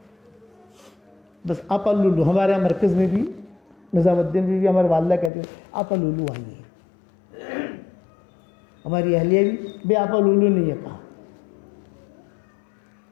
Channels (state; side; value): drops out; right; at 5.3 s